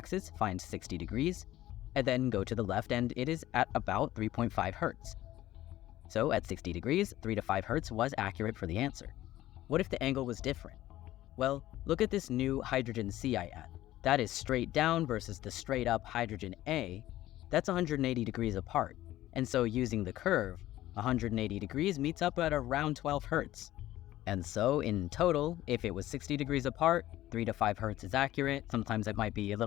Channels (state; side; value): quieter; right; 14.8 dB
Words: find 60 degrees, and then go to the left, and it is at about 3.5 Hertz. So at 60 degrees, 3 to 5 Hertz was accurate for the answer. What if the angle was different? Well, look at this new hydrogen C I add. That is straight down versus the straight up hydrogen A. That's 180 degrees apart. And so using the curve, 180 degrees meets up at around 12 Hertz. And so in total, if it was 60 degrees apart, 3 to 5 Hertz is accurate. Sometimes it might be a